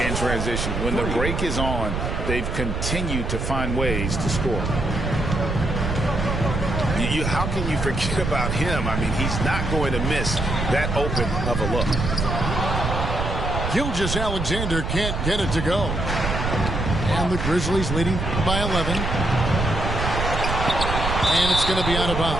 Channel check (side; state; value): right; noise; rumble, 2 dB below the sound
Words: in transition. When the break is on, they've continued to find ways to score. How can you forget about him? I mean, he's not going to miss that open of a look. Gilgeous-Alexander can't get it to go. And the Grizzlies leading by 11. And it's going to be out of